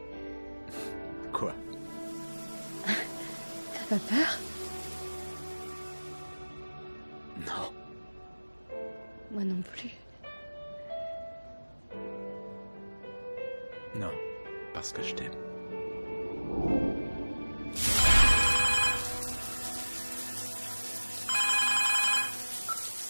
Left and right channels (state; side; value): inverted; both; correlation -1.00